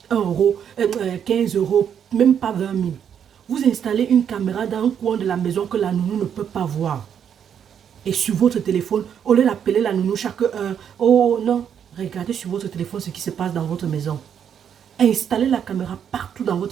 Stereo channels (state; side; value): quieter; left; 8.4 dB